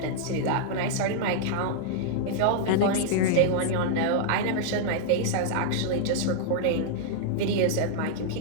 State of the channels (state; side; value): different; both; correlation -0.01